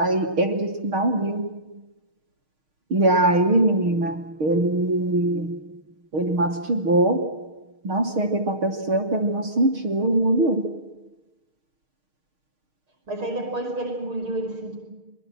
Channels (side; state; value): left; late; 6.5 ms